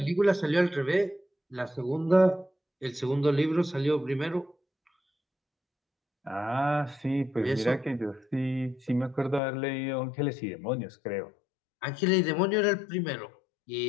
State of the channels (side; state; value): right; drops out; at 9.4 s